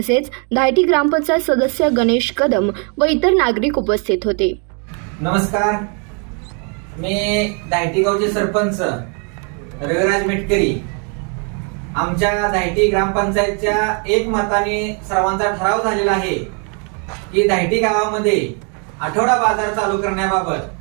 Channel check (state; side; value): quieter; left; 38.2 dB